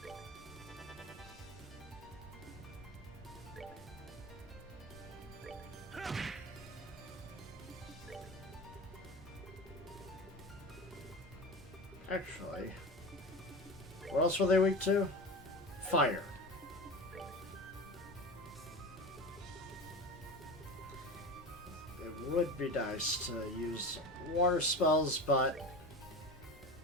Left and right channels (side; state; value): both; normal; correlation 0.29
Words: Actually, what else were they weak to? Fire. It would be nice to use water spells, but